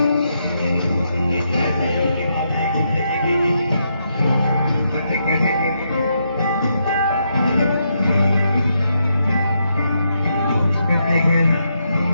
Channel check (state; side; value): inverted; both; correlation -0.80